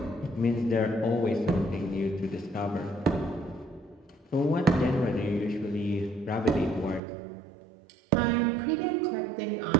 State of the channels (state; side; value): drops out; left; at 7.0 s